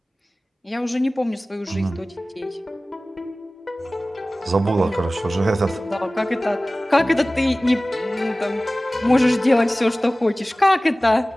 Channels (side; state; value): both; normal; correlation 0.97